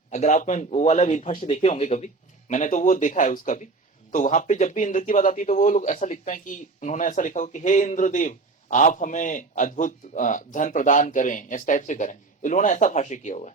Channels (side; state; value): left; quieter; 3.8 dB